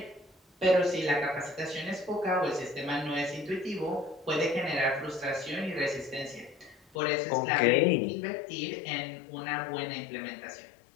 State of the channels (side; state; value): right; drops out; at 7.0 s